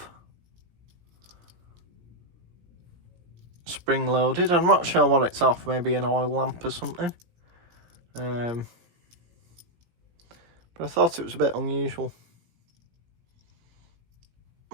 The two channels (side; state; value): left; late; 17 ms